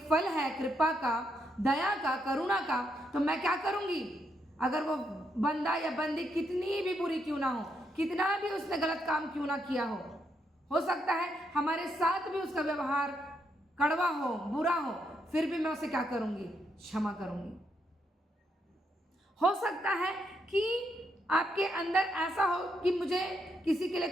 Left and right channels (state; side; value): normal; both; correlation 0.78